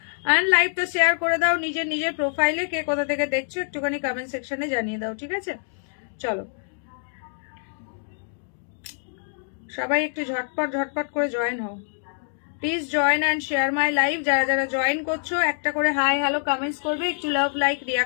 অ্যান্ড লাইভটা শেয়ার করে দাও নিজের প্রোফাইলে। কে কোথা থেকে দেখছো একটুখানি কমেন্ট সেকশনে জানিয়ে দাও, ঠিক আছে? চলো সবাই একটু ঝটপট করে জয়েন হও please. Join and share my live. যারা জয়েন করছো একটা করে হাই হ্যালো কমেন্টস করবে, একটু লাভ লাইক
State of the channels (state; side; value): silent; right; digital silence